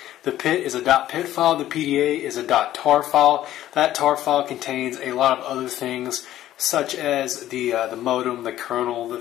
The PIT is a .PIT file, the PDA is a .tar file. That tar file contains a lot of other things, such as the modem, the kernel, the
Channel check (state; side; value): quieter; right; 13.2 dB